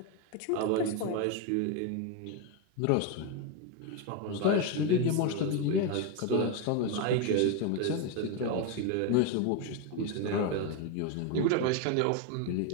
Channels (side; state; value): both; different; correlation 0.02